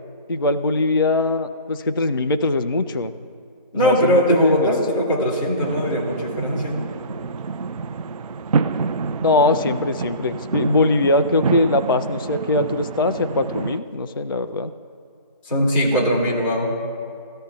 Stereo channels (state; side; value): inverted; both; correlation -0.39